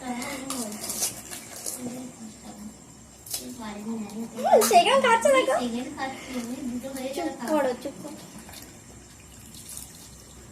সেখানে খাচ্ছে দেখো, চুপ করো চুপ করো।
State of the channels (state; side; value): identical; both; correlation 1.00